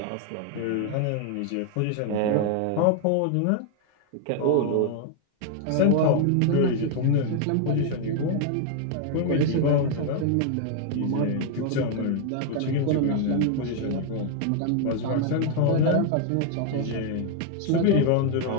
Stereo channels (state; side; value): different; both; correlation 0.00